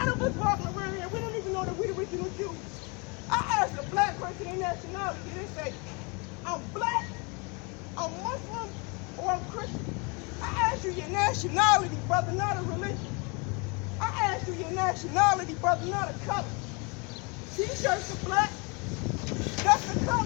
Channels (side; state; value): right; quieter; 30.8 dB